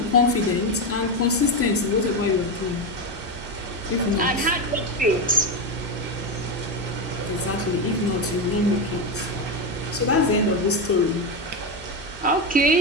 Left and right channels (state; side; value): normal; both; correlation 0.12